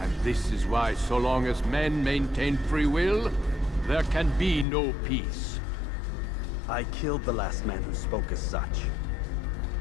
this is why, so long as men maintain free will, there can be no peace. I killed the last man who spoke as such.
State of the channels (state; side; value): drops out; right; at 4.7 s